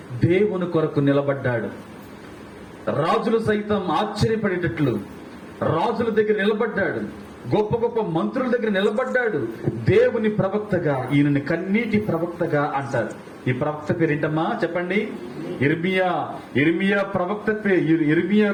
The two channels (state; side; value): identical; both; correlation 1.00